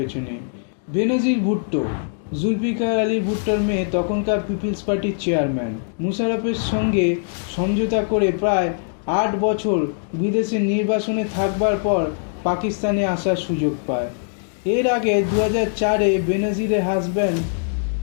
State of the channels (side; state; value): right; silent; digital silence